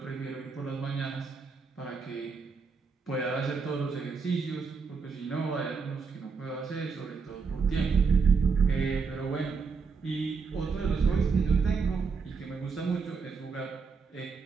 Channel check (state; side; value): quieter; left; 5.1 dB